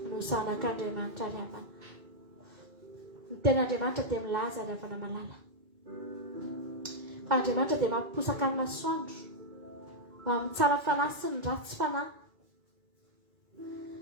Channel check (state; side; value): late; left; 2.1 ms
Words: no zanak'Andriamanitra ravana. Ny ten'Andriamanitra dia milaza ravana malala. Fa Andriamanitra dia mampiposaka ny masoandro ho amin'ny tsara fanahy sy ny ratsy fanahy.